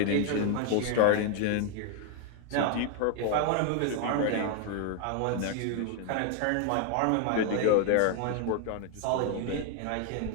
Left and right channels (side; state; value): both; different; correlation 0.00